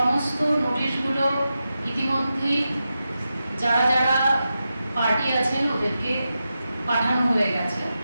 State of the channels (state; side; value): inverted; both; correlation -0.90